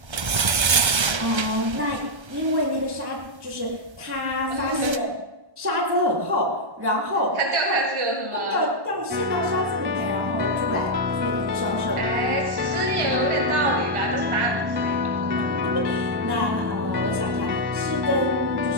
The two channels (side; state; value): left; late; 1.3 ms